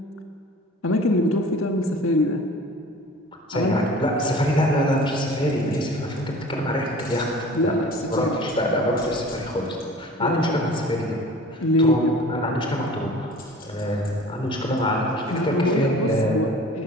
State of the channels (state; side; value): normal; both; correlation 0.43